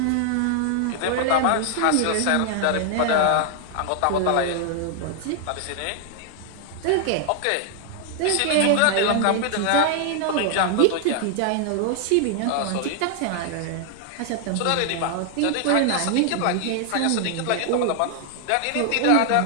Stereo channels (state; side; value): different; both; correlation 0.00